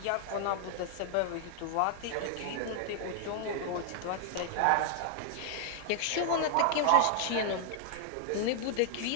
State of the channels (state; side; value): different; both; correlation 0.00